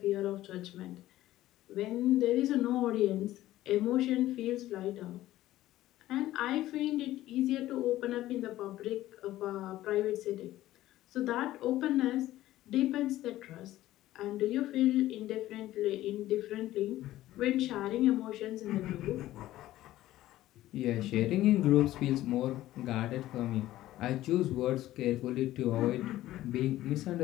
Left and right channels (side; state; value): right; quieter; 15.0 dB